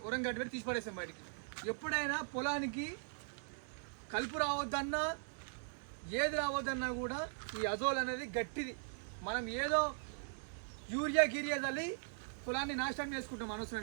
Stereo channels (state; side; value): silent; left; digital silence